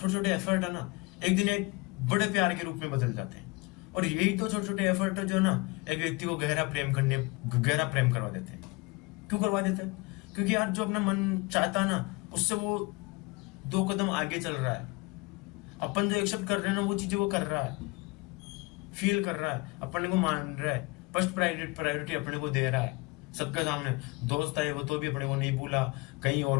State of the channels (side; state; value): right; quieter; 25.7 dB